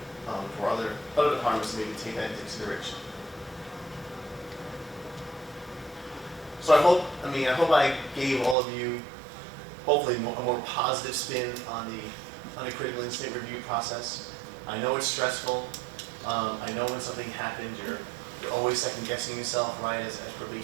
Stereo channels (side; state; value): left; drops out; at 8.6 s